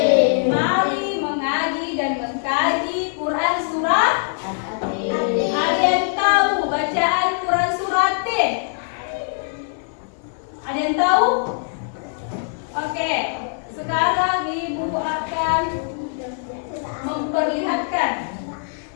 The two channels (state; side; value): silent; right; 64 dB below the other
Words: Mari mengaji dan mengkaji Quran surat. Ada yang tahu bacaan Quran surat At-Tin? Ada yang tahu? Oke, sekarang Ibu akan memperlihatkan.